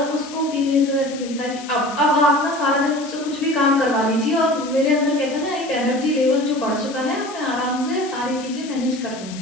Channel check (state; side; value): noise; left; hiss, 16 dB below the sound